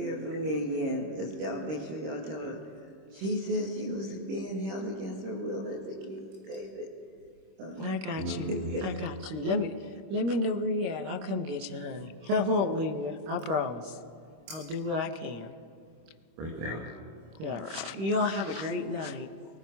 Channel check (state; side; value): late; left; 26 ms